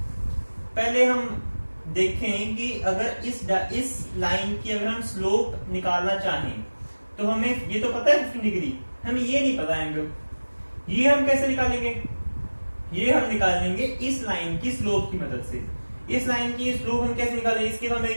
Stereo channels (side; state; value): both; inverted; correlation -1.00